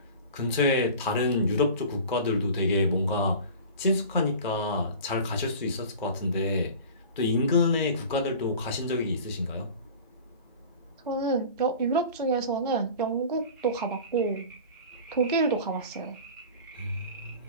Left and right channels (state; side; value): inverted; both; correlation -0.39